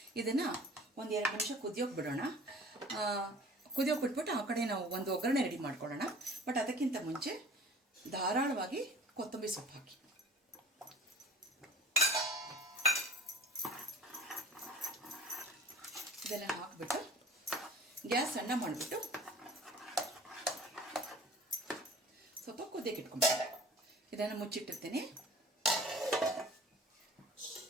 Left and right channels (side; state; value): both; normal; correlation 0.46